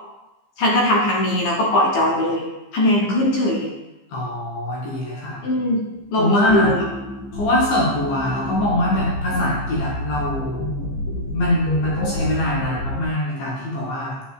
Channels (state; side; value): late; right; 15 ms